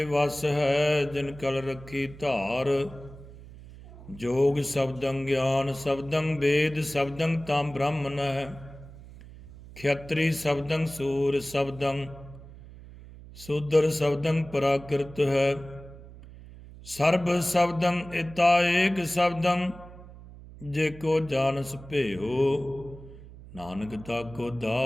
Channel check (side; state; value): right; noise; hum, 17 dB below the sound